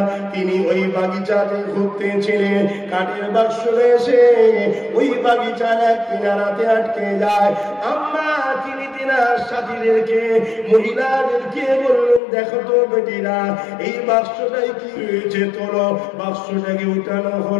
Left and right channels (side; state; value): right; drops out; at 12.2 s